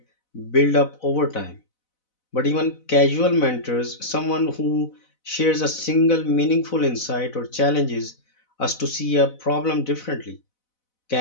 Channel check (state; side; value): late; right; 4.0 ms